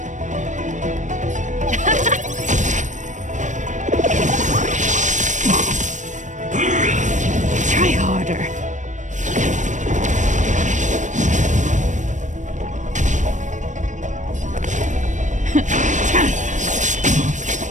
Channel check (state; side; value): late; left; 0.35 ms